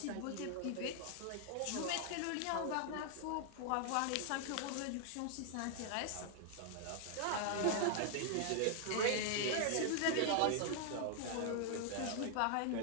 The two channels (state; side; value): different; both; correlation 0.00